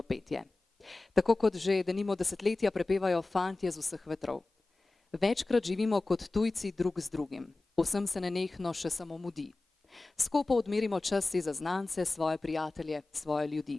petje. Tako kot že denimo desetletja prepevajo fantje z vseh vetrov. Večkrat živimo kot tujci drug z drugim. Vsem se nenehno še samo mudi. Skopo odmerimo čas si za znance, svoje prijatelje, svoje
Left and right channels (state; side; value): quieter; right; 3.2 dB